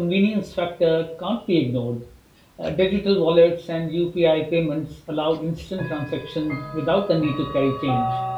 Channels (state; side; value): identical; both; correlation 1.00